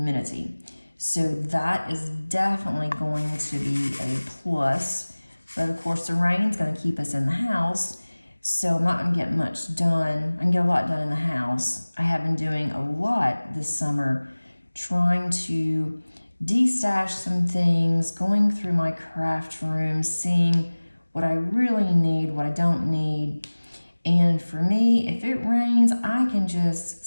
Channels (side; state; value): both; inverted; correlation -1.00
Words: So that is definitely going to be a plus. But of course, the rain's going to keep us in the house, so I'm not going to get much done. I can get a lot done in the house. I have been doing a lot this summer, trying to destash some things, going through my craft room, seeing what I really need, what I don't need. And for me, if it rains, I can just